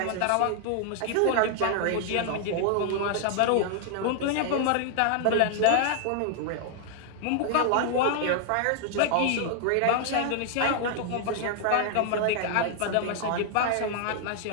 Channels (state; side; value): different; both; correlation 0.00